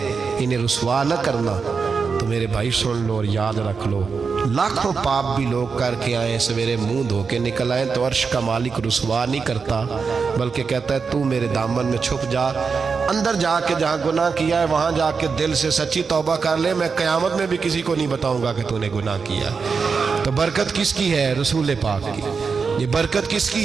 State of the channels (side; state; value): left; quieter; 5.2 dB